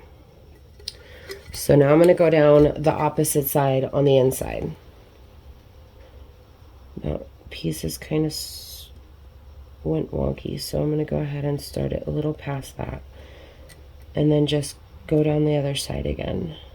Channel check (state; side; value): identical; both; correlation 1.00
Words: So now I'm going to go down the opposite side on the inside. That piece is kind of went wonky, so I'm going to go ahead and start it a little past that. And then just go down the other side again